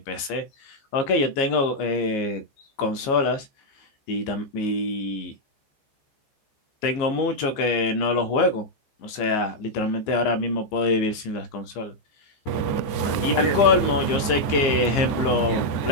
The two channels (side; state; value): right; late; 15 ms